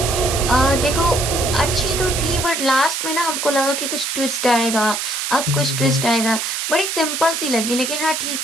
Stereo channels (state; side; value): noise; right; hiss, 2 dB below the sound